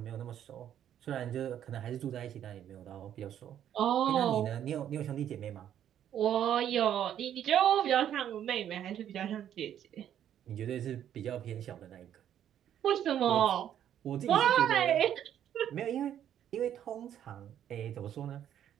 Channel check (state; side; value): quieter; left; 10.3 dB